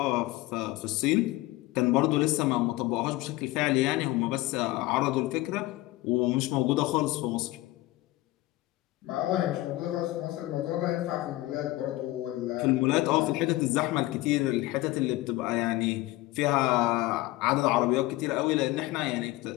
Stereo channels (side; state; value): right; quieter; 18.5 dB